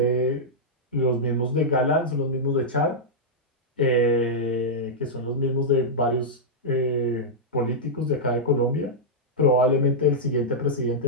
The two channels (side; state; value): both; normal; correlation -0.08